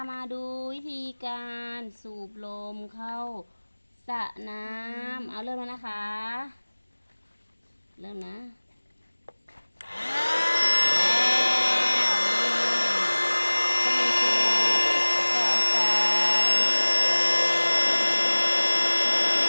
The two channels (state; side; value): inverted; both; correlation -1.00